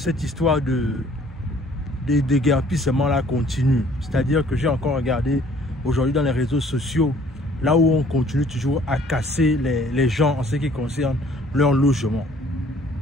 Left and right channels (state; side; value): normal; both; correlation 0.57